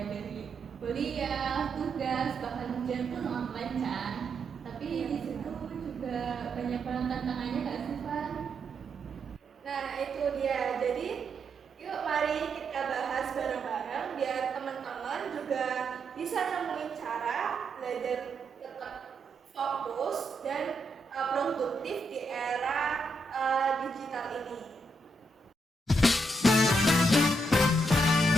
dari kuliah, tugas, bahkan ujian pun online kan. Tapi di situ juga banyak banget tantangannya nggak sih, Van? Nah, itu dia. Jadi, yuk mari kita bahas bareng-bareng biar teman-teman juga bisa nemuin cara belajar tetap fokus dan produktif di era digital ini.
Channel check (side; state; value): both; normal; correlation 0.80